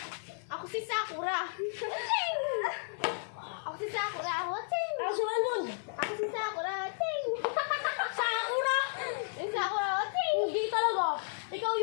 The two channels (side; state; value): right; silent; digital silence